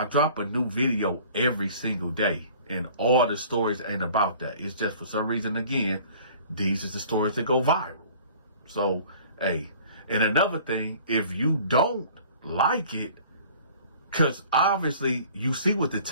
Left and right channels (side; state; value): both; inverted; correlation -0.49